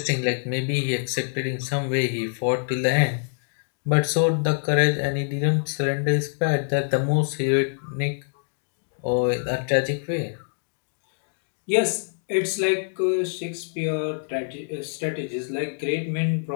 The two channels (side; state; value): right; silent; digital silence